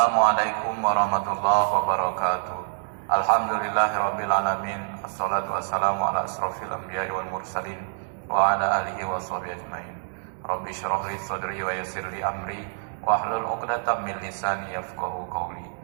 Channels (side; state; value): left; silent; digital silence